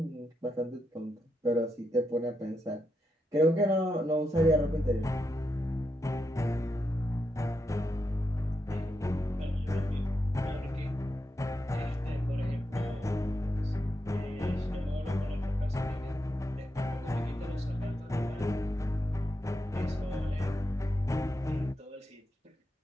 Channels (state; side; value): normal; both; correlation 0.84